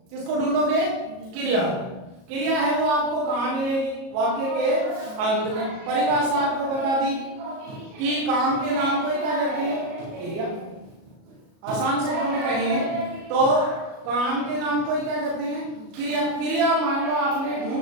किसको ढूंढोगे, क्रिया। क्रिया है वो आपको कहां मिलेगी, वाक्य के अंत में। परिभाषा आपको बता दी कि काम के नाम को क्या कहते हैं, क्रिया। आसान शब्दों में कहें तो काम के नाम को क्या कहते हैं, क्रिया। क्रिया मान लो आपने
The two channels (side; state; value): left; late; 37 ms